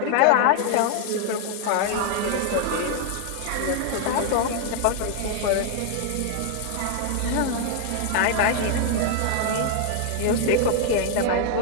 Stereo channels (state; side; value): different; both; correlation 0.00